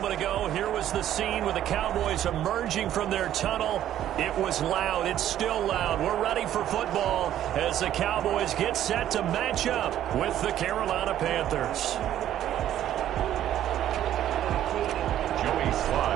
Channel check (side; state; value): left; quieter; 11.7 dB